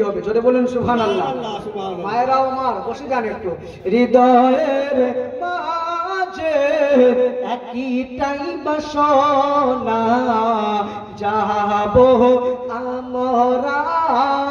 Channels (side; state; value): both; identical; correlation 1.00